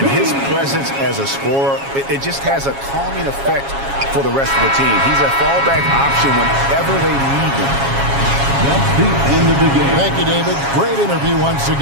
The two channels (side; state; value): left; late; 7.3 ms